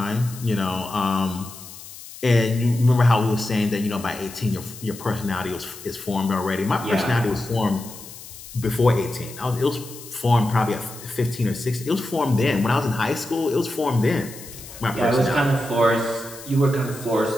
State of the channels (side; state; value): left; noise; hiss, 15 dB below the sound